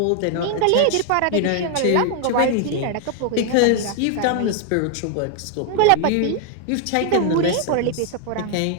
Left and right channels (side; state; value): both; different; correlation 0.00